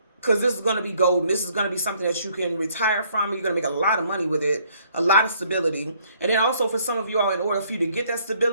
Because this is going to be golden. This is going to be something that you can retire from. You're going to make a lot of money with it, a lot of stability. And then also for some of you all, in order for you to get that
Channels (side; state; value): both; inverted; correlation -0.64